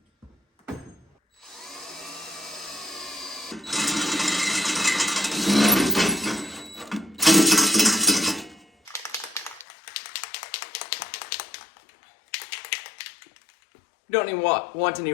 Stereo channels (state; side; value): drops out; right; at 9.7 s